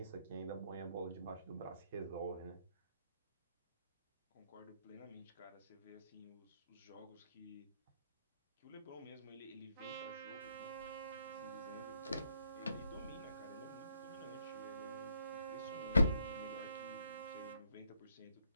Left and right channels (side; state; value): both; inverted; correlation -0.73